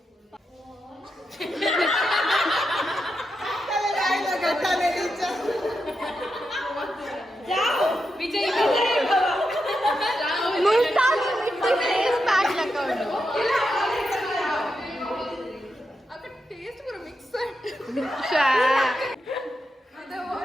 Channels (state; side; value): normal; both; correlation 0.86